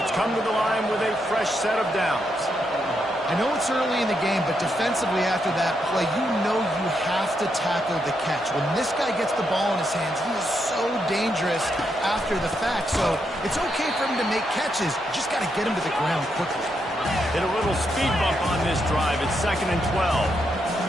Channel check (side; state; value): both; normal; correlation 0.80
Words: come to the line with a fresh set of downs. I know it's early in the game, but defensively after that play, you know you have to tackle the catch. When this guy gets the ball in his hands, he is so dangerous after the fact. So it's okay for him to make catches. You just got to get him to the ground quickly. Hit a little speed bump on this drive. It's 2nd and 12.